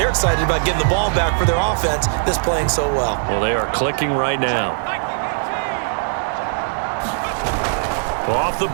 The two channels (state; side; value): silent; left; 66 dB below the other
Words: excited about getting the ball back for their offense that's playing so well. Well, they are clicking right now. Off the